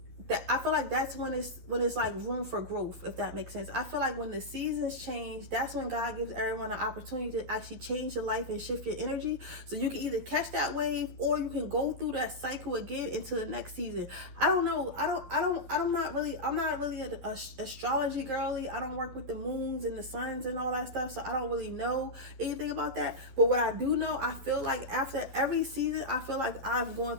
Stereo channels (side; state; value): left; late; 12 ms